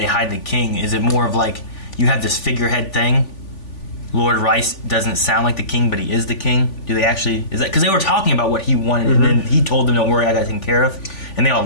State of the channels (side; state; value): right; late; 3.4 ms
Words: hide the king? Is it more of like, you have this figurehead thing, Lord Rice doesn't sound like the king, but he is the king? Do they actually, is that, because they were talking about what he wanted, and then he told them, don't worry, I got it taken care of, and they all